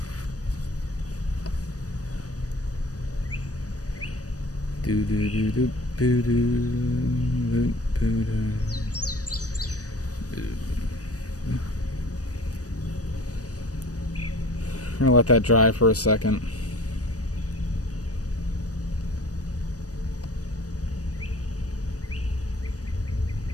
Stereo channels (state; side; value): late; right; 0.67 ms